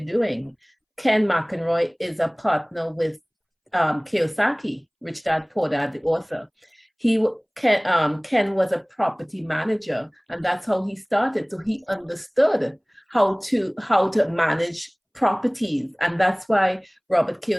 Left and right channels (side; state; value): both; identical; correlation 1.00